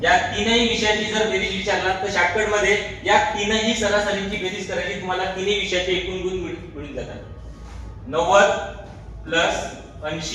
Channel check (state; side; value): identical; both; correlation 1.00